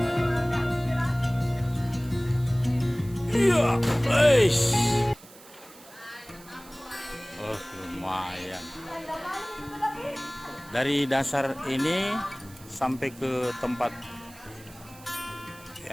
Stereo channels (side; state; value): right; noise; hiss, 21 dB below the sound